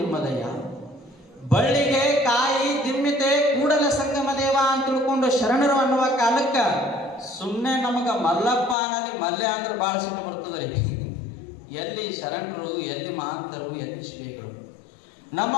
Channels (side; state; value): right; drops out; at 8.8 s